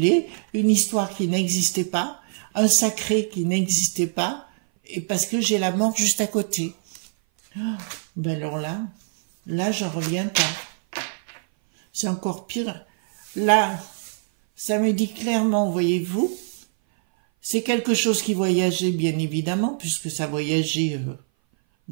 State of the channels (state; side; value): silent; left; 58 dB below the other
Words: une histoire qui n'existait pas, un sacré qui n'existait pas, et parce que j'ai la mort juste à côté. Ben alors là, j'en reviens pas. C'est encore pire. Là, ça me dit clairement, voyez-vous, c'est quelque chose qui voyageait, bien évidemment, puisque ça voyageait